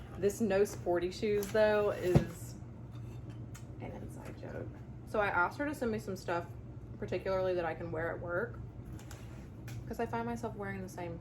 This no sporty shoes though is an inside joke. So I asked her to send me some stuff particularly that I can wear at work, because I find myself wearing the same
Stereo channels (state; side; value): identical; both; correlation 1.00